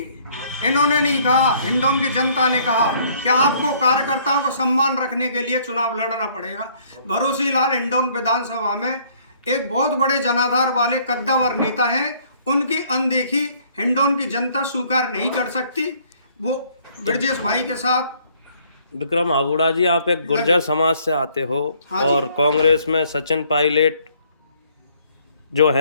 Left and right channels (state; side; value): inverted; both; correlation -0.62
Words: इन्होंने नहीं कहा, हिंडौन की जनता ने कहा कि आपको कार्यकर्ताओं को सम्मान रखने के लिए चुनाव लड़ना पड़ेगा। भरोसी लाल हिंडौन विधानसभा में एक बहुत बड़े जनाधार वाले कद्दावर नेता हैं, उनकी अनदेखी हिंडौन की जनता स्वीकार नहीं कर सकती। वो ब्रजेश भाई के साथ विक्रम आगुड़ा जी, आप एक गुर्जर समाज से आते हो, हाँ और कांग्रेस में सचिन पायलट जो